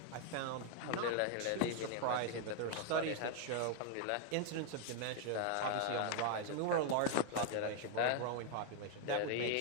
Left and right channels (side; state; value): both; different; correlation 0.00